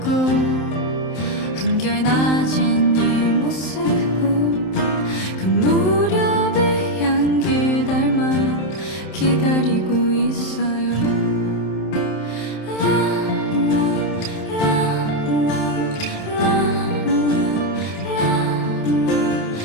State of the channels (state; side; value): late; right; 27 ms